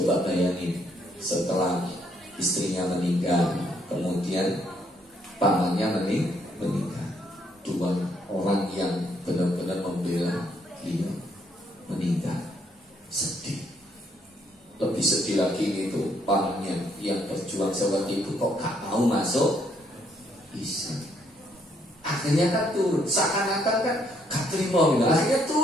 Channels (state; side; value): normal; both; correlation 0.70